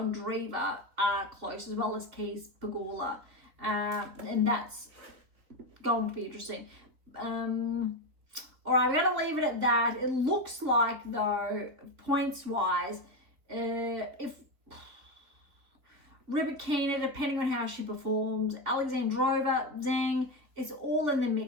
are close, as well as Keys, Pegula. And that's going to be interesting. All right, we're going to leave it at that. It looks like, though, points-wise, if Rybakina, depending on how she performs, Alexandrova, Zhang, it's all in the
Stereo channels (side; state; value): left; late; 3.7 ms